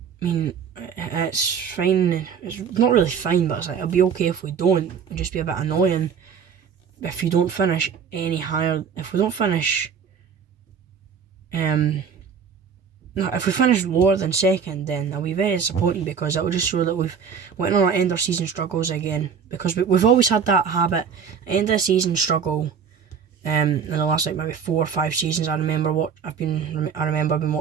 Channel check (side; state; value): left; quieter; 6.9 dB